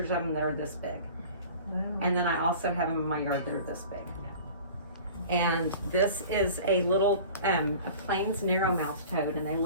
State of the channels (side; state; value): both; inverted; correlation -0.42